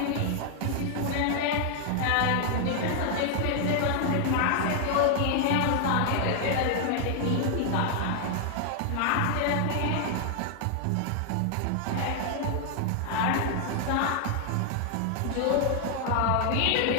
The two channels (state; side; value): different; both; correlation 0.00